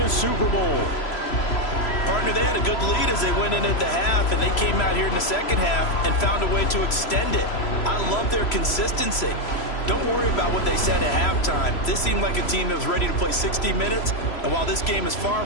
Super Bowl. Partner, they had a good lead as they went in at the half, and they came out here in the 2nd half and found a way to extend it. I love their consistency. Don't worry about what they said at halftime. This seemed like a team that was ready to play 60 minutes, and while this game is far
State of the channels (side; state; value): right; late; 3.0 ms